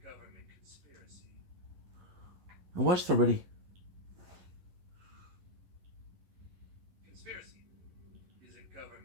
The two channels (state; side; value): late; left; 11 ms